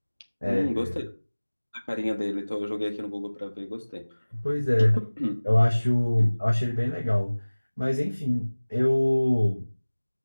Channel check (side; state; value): both; inverted; correlation -1.00